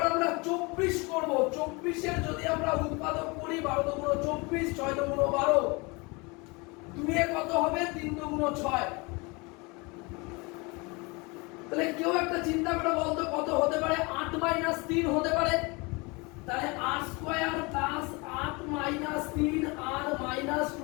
আমরা 24 করব। 24 এর যদি আমরা উৎপাদক করি 12 দুগুণ 24, 6 দুগুণ 12, 2 এ কত হবে 3 দুগুণ 6। তাহলে কেউ একটা চিন্তা করে বলতো কত হতে পারে? 8 - 3 হতে পারে। তাহলে r² plus 8 - 3 r minus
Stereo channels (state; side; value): quieter; right; 27.3 dB